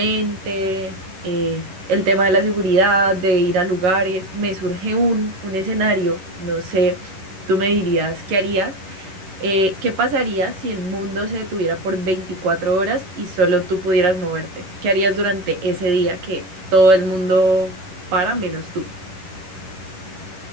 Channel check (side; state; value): left; late; 11 ms